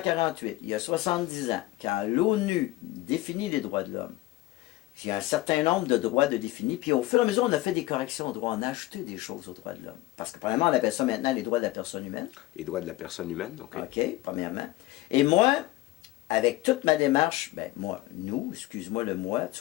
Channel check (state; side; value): quieter; right; 17.7 dB